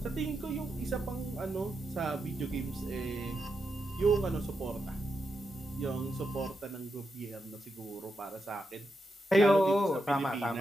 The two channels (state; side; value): normal; both; correlation 0.86